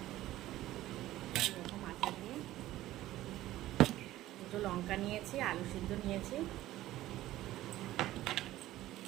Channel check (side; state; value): left; quieter; 15.2 dB